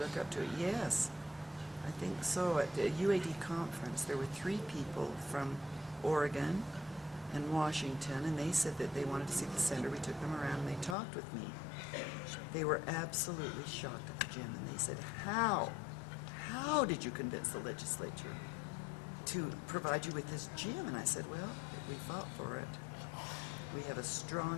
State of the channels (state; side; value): drops out; right; at 11.0 s